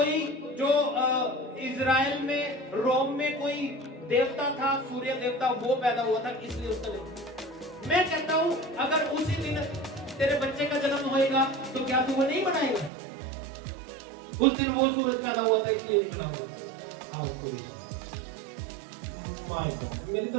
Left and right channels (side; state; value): left; drops out; at 12.9 s